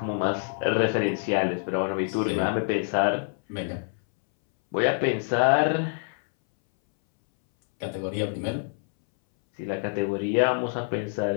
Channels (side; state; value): right; silent; 61 dB below the other